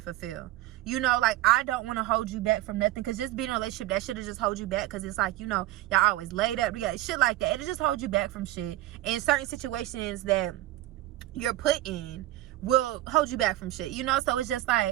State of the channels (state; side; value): quieter; left; 15.6 dB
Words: you know. Like, I don't want to hold you back from nothing, because just being in a relationship, that should have just hold you back, because it's like, you know, y'all always laid up, we got shit like that, it'll just hold you back from shit in certain situations that you're put in will hold you back from shit, you know? So it's just